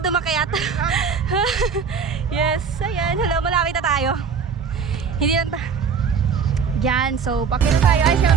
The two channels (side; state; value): left; quieter; 6.1 dB